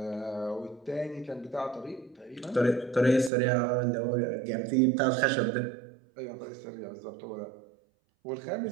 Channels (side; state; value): left; drops out; at 3.3 s